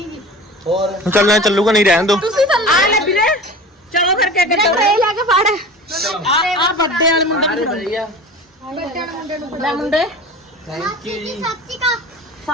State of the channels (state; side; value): normal; both; correlation 0.36